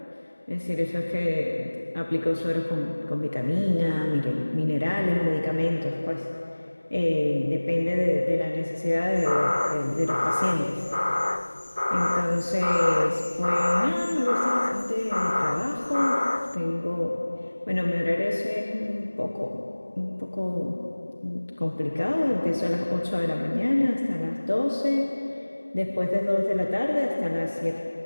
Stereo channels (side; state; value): both; inverted; correlation -1.00